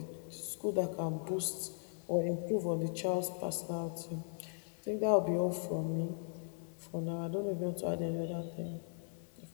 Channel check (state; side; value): silent; right; digital silence